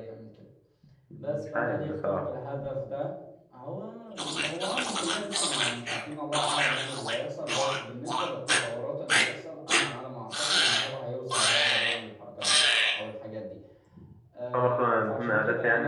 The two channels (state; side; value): identical; both; correlation 1.00